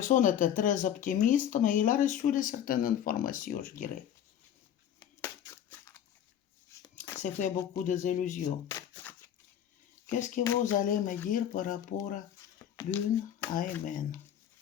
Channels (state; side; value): quieter; right; 10.0 dB